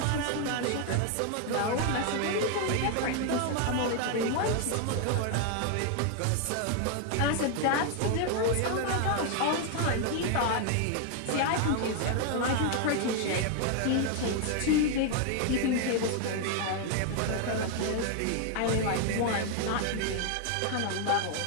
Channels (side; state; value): both; different; correlation 0.00